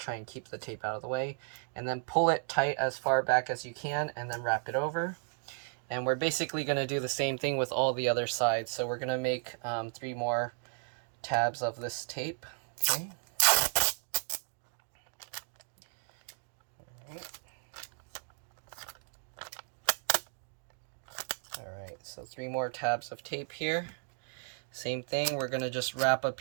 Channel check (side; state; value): left; silent; 55 dB below the other